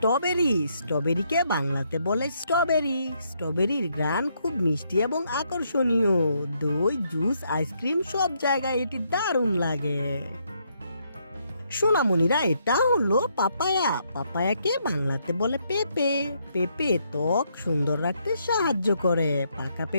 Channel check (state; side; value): inverted; both; correlation -0.75